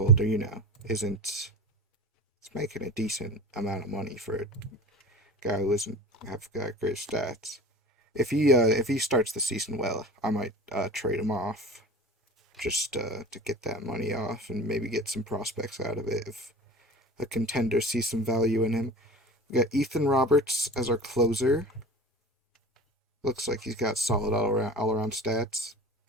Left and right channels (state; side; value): normal; both; correlation 0.36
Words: isn't he's making a decent amount of money for a guy who doesn't have got great stats. If he starts the season well, I might trade him off just to get that money off and maybe get some prospects out of it if a contender sees some value in him. We got Ethan Roberts as our closer. Looks like he's got solid all around stats.